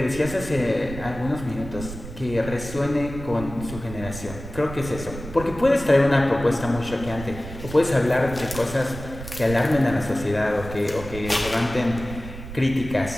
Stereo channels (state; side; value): noise; right; rumble, 11 dB below the sound